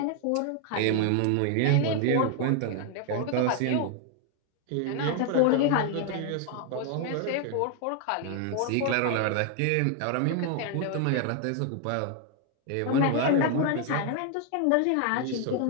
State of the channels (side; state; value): both; different; correlation 0.00